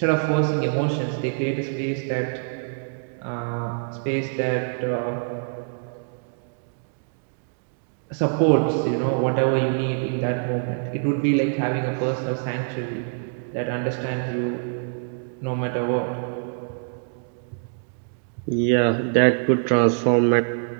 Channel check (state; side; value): silent; left; digital silence